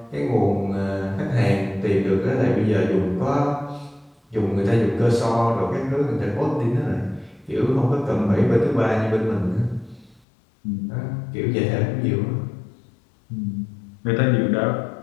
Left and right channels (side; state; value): right; drops out; at 10.2 s